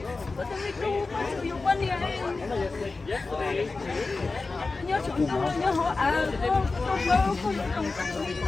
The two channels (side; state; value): right; quieter; 3.8 dB